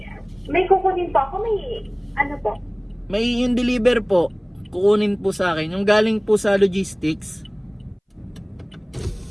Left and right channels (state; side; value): identical; both; correlation 1.00